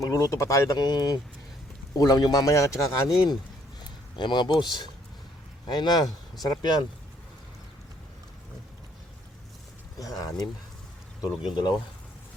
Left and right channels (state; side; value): normal; both; correlation 0.66